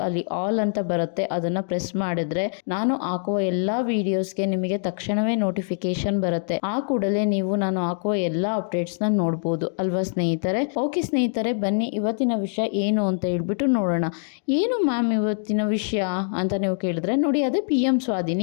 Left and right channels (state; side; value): silent; right; digital silence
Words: ಅಲ್ಲಿ ಆಲ್ ಅಂತ ಬರುತ್ತೆ, ಅದನ್ನ ಪ್ರೆಸ್ ಮಾಡಿದ್ರೆ ನಾನು ಹಾಕುವ ಎಲ್ಲಾ ವಿಡಿಯೋಸ್ಗೆ ನಿಮಗೆ ತಕ್ಷಣವೇ ನೋಟಿಫಿಕೇಶನ್ ಬರುತ್ತೆ. ಆ ಕೂಡಲೇ ನೀವು ನಾನು ಹಾಕುವ ಎಲ್ಲಾ ಅಪ್ಡೇಟ್ಸ್ ನ ನೋಡಬಹುದು ಅಲ್ವಾ ಸ್ನೇಹಿತರೆ. ಓಕೆ ಸ್ನೇಹಿತರೆ, ಬನ್ನಿ ಇವತ್ತಿನ ವಿಷಯ ಏನು ಅಂತ ಹೇಳ್ಬಿಟ್ಟು ನೋಡೋಣ. ಏನು ಮ್ಯಾಮ್ ಇವತ್ತಿನ ವಿಷಯ ಅಂತ ನೀವು ಕೇಳಿದ್ರೆ, ನೋಡಿ ಅದೇ PM